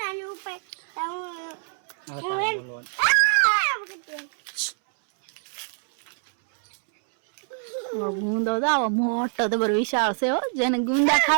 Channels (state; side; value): silent; left; 61 dB below the other